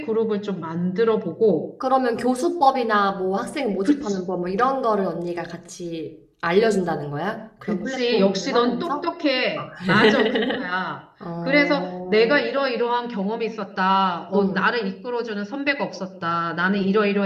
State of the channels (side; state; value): both; identical; correlation 1.00